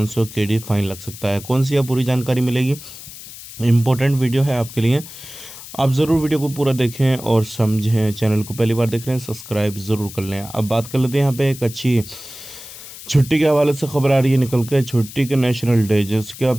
KD फाइन लग सकता है। कौन सी है पूरी जानकारी मिलेगी। इम्पोर्टेंट वीडियो है आपके लिए, आप ज़रूर वीडियो को पूरा देखें और समझें। चैनल को पहली बार देख रहे हैं सब्सक्राइब ज़रूर कर लें। अब बात कर लेते हैं यहाँ पे एक अच्छी छुट्टी के हवाले से खबर आ रही है निकल के। छुट्टी के नेशनल डे जिसका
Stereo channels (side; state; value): left; noise; hiss, 15 dB below the sound